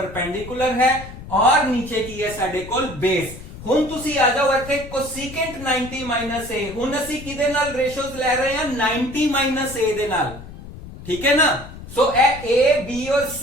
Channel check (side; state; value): left; noise; rumble, 14 dB below the sound